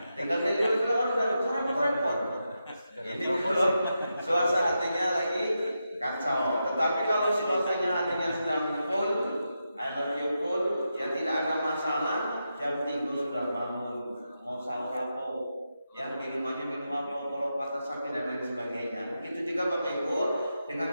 Tinggal dia keluar dari sana repot. Ini belum suasananya lagi kacau. Tetapi kalau suasananya hatinya sedang full, I love you full, ya tidak ada masalah. Jam 3 sudah bangun, mau sahur apa, yang minumannya minum apa, kalau patah sakit dan lain sebagainya. Begitu juga Bapak Ibu,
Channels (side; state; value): both; inverted; correlation -0.87